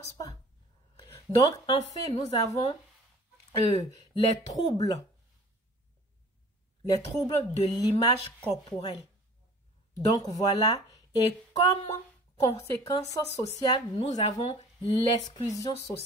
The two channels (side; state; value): both; normal; correlation 0.47